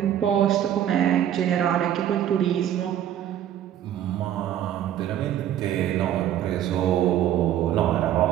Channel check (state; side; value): quieter; left; 11.1 dB